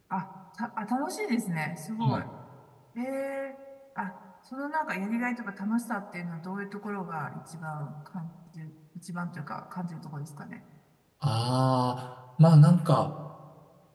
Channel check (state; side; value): identical; both; correlation 1.00